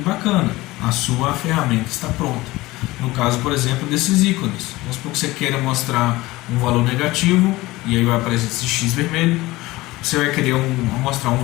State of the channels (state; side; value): quieter; right; 19.4 dB